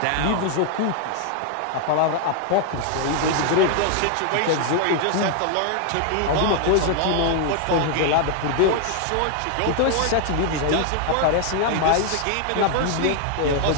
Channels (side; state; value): both; different; correlation 0.00